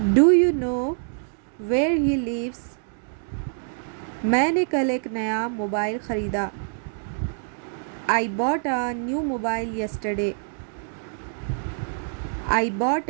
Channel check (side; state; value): left; silent; digital silence